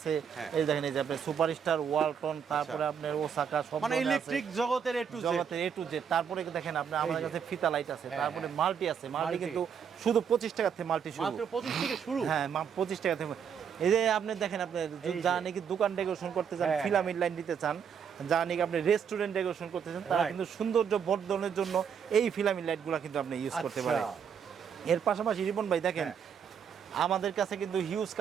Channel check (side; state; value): left; quieter; 7.4 dB